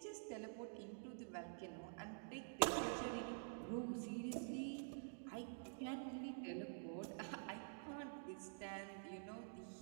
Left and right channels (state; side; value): silent; left; digital silence